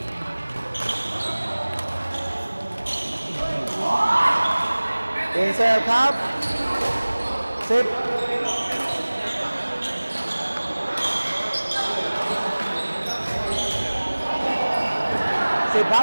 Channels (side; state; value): both; inverted; correlation -1.00